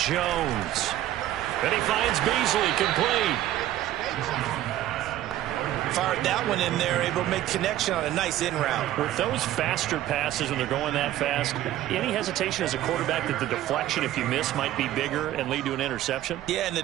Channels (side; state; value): left; quieter; 13.6 dB